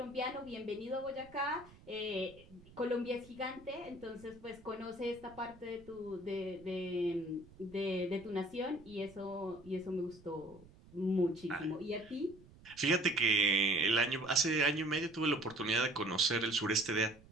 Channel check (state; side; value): noise; right; rumble, 23 dB below the sound